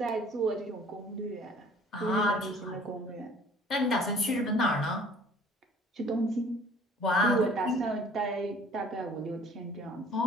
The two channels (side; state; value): both; normal; correlation 0.53